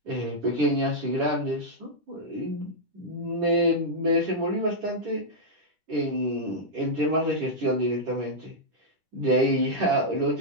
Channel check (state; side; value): late; left; 10 ms